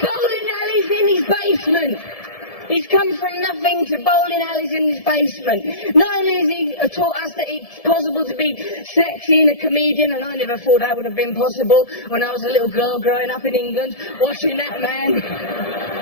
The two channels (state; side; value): late; right; 1.7 ms